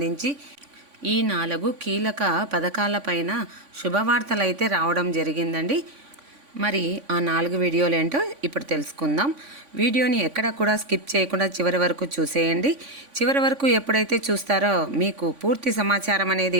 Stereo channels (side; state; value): left; late; 3.5 ms